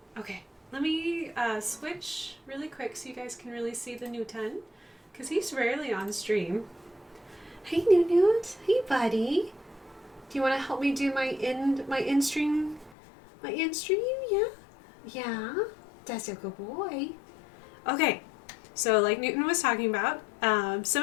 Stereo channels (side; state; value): right; drops out; at 13.0 s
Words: Okay, let me switch really quick so you guys can really see the Newton, because he's rarely on stream. Hey Newt, hey buddy. Do you want to help me do my in-stream My in-stream, yeah? Yeah, that's a good boy. Okay, so like Newton was talking about,